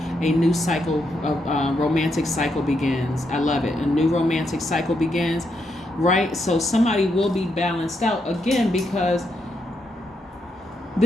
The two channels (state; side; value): normal; both; correlation 0.80